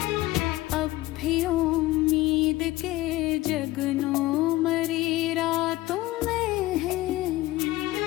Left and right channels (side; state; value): right; quieter; 17.9 dB